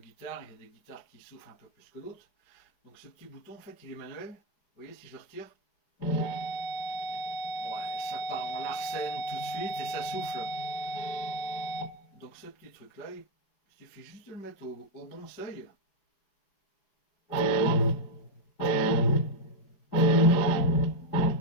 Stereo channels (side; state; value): right; late; 4.9 ms